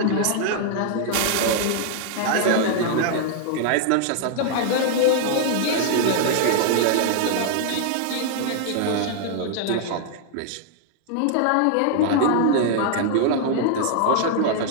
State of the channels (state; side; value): different; both; correlation 0.00